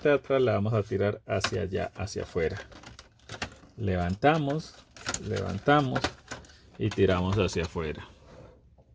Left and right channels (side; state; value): both; identical; correlation 1.00